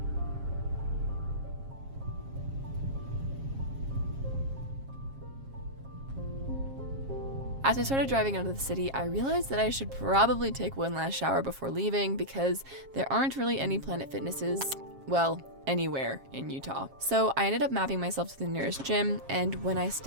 As I started driving out of the city, I realized that I should probably take one last shower before leaving because there aren't really any Planet Fitnesses, well, anywhere in Utah. So I ended up mapping myself to the nearest gym, and when I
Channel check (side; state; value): left; late; 7.4 ms